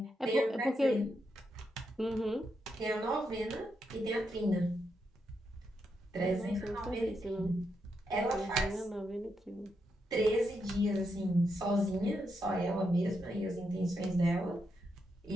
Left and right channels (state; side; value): normal; both; correlation 0.82